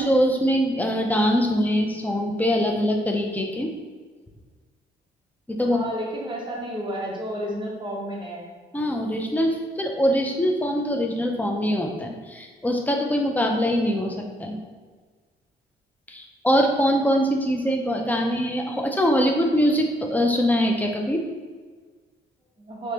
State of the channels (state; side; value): normal; both; correlation 0.74